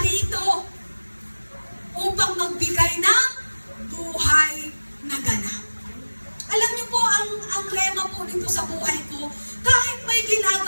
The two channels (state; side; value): inverted; both; correlation -1.00